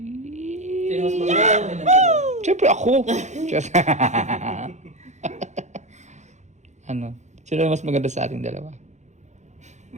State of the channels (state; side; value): late; left; 0.34 ms